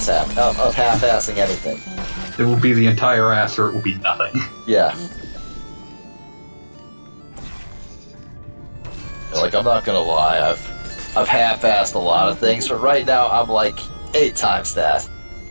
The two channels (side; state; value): both; inverted; correlation -1.00